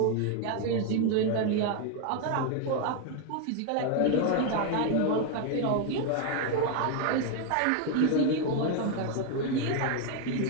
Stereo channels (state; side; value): different; both; correlation 0.01